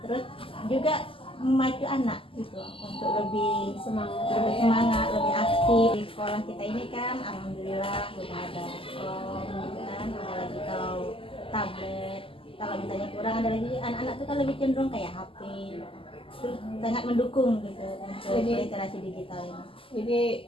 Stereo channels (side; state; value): right; late; 0.26 ms